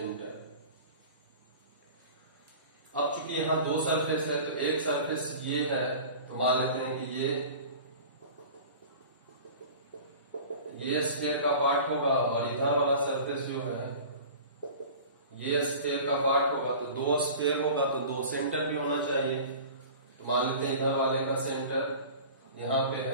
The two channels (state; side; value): inverted; both; correlation -0.39